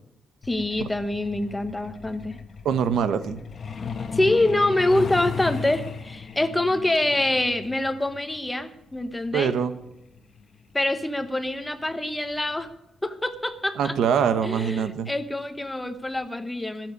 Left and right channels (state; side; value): normal; both; correlation 0.85